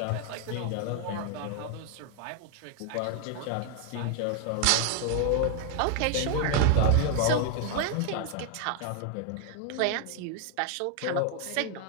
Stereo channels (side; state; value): both; different; correlation 0.00